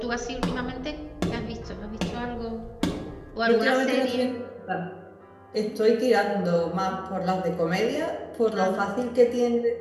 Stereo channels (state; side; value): identical; both; correlation 1.00